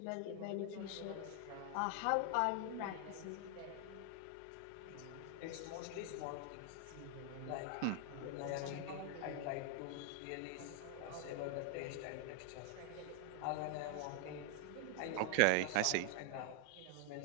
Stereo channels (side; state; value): both; different; correlation 0.00